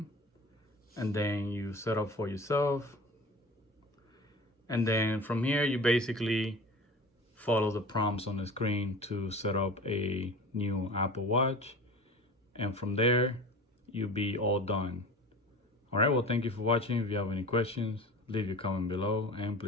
and then you set up for yourself. And then from here, you basically follow the prompts on the screen to set up a new Apple Watch. And from there, you'll be all done. All right, well, thank you for watching. If you have any questions, leave your comment below and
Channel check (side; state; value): both; normal; correlation 0.37